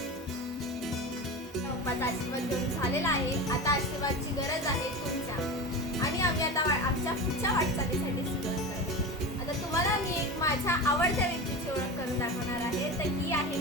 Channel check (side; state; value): both; normal; correlation 0.26